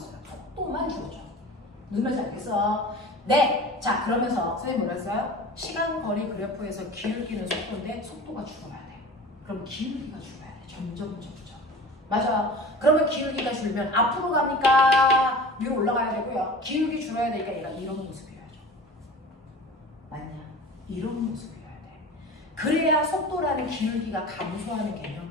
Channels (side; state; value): both; normal; correlation 0.37